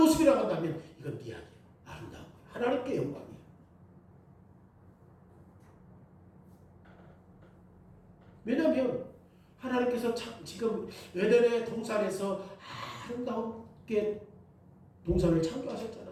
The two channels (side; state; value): both; identical; correlation 1.00